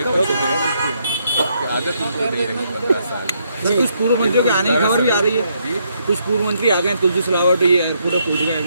आदत उनको नहीं रही 15 साल। कुछ पूर्व मंत्रियों के आने की खबर भी आ रही है। कुछ पूर्व मंत्री आ गए, तुलसी सिलावट ये पूरा पूछ गए।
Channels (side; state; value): both; inverted; correlation -0.74